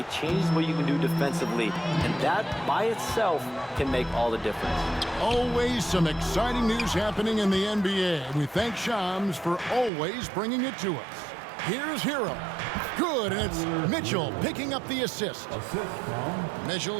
changes what you can do defensively, and that by itself can make all the difference. Always some exciting news happening in the NBA. And we thank Shams for always bringing it to us. Here's Hero. Good, and it's Mitchell picking up the assist.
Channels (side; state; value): left; drops out; at 9.9 s